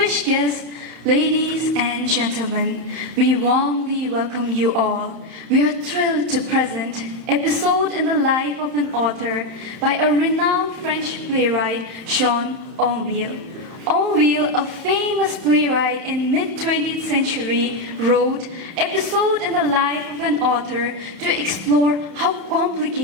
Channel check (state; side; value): late; left; 31 ms